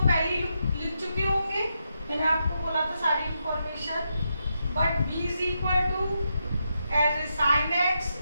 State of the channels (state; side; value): inverted; both; correlation -0.84